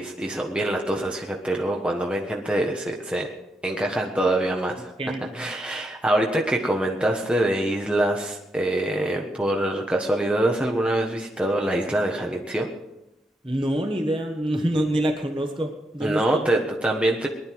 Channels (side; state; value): both; normal; correlation 0.80